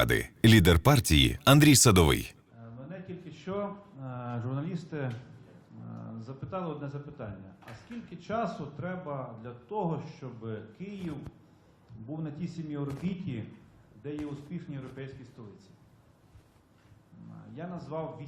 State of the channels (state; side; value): identical; both; correlation 1.00